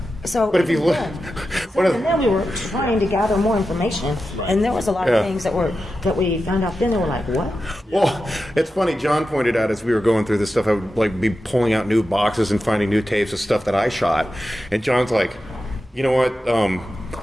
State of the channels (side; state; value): both; normal; correlation 0.91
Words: So, But if you look... and then we were trying to gather more information, and there was a lot of things that we found out then. They were like, what? Well, it's funny. John pointed out as we were going through this stuff, I would be pulling out new boxes and finding new tapes of stuff that I shot. And John's like, you know what?